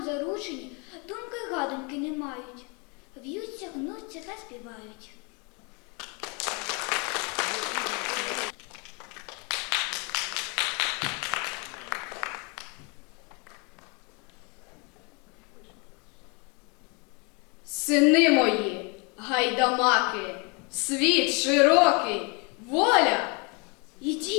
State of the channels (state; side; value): quieter; right; 32.0 dB